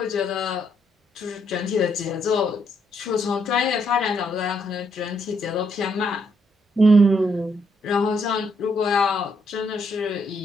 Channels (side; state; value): both; normal; correlation 0.74